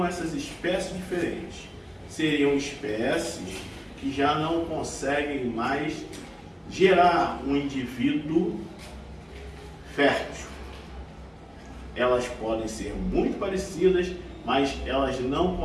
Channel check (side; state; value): both; identical; correlation 1.00